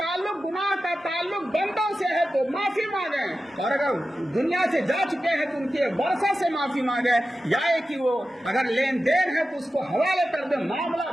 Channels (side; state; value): both; normal; correlation 0.93